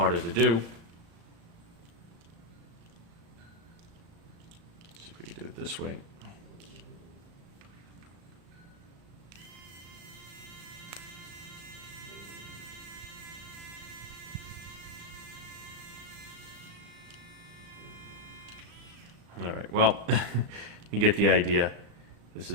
to do. See if we can do it this way. All right, well, you get the idea. This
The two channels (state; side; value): late; left; 35 ms